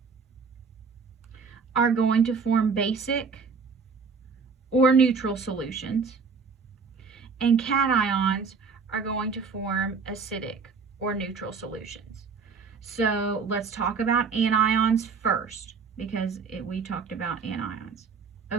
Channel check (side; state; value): left; quieter; 5.1 dB